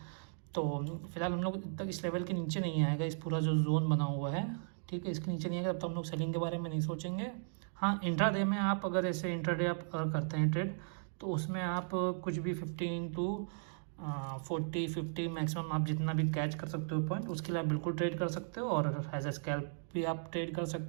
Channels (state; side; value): silent; left; digital silence